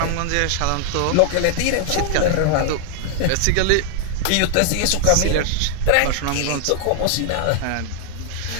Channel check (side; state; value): both; different; correlation 0.00